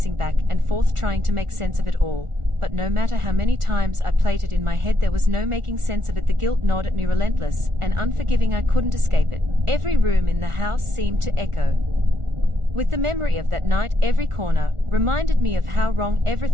back and forth, trying to make sense of it all. But no matter how many times I played it in my head, there was no making sense of it. The guilt gnawed at me, relentless and unforgiving. I couldn't escape it. Every room in the house seemed to echo with the memory of that night. Every corner reminded me of how wrong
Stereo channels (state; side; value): late; left; 1.4 ms